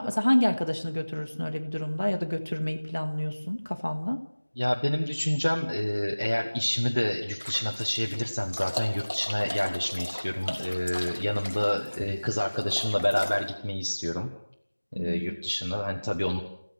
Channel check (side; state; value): both; inverted; correlation -1.00